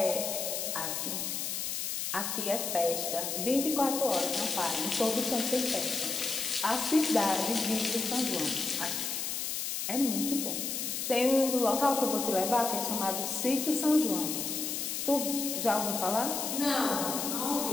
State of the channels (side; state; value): left; noise; hiss, 2 dB below the sound